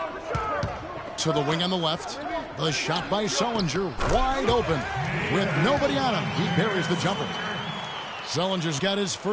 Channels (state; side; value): identical; both; correlation 1.00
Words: To the wing on the left. The shot by Sullinger, wide open. With nobody on him, he buries the jumper. Sullinger's got his